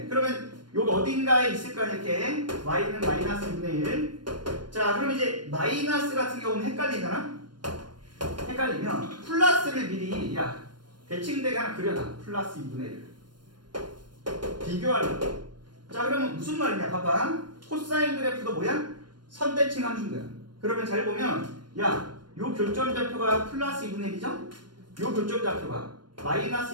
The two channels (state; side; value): late; left; 0.72 ms